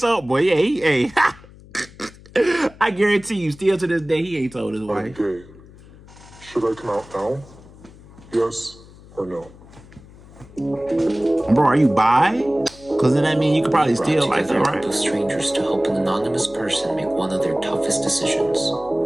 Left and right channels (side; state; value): left; noise; hum, 22 dB below the sound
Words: up. Boy, yeah, hey. I guarantee you, still to this day, he ain't told his wife. I'm gay. Should I come out now? Yes or no? Bro, are you bi? Because then that means you could probably steal like that, right? Two strangers to help an anonymous person make one of their toughest decisions.